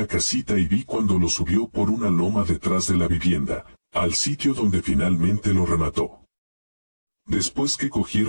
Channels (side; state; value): both; inverted; correlation -1.00